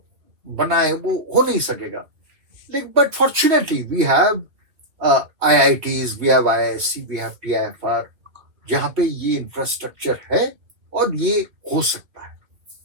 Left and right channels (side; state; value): left; late; 2.7 ms